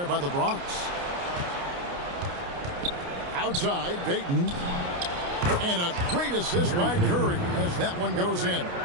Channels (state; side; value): late; left; 29 ms